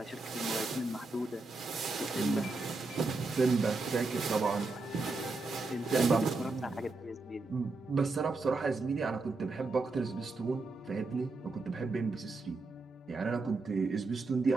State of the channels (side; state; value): left; quieter; 3.6 dB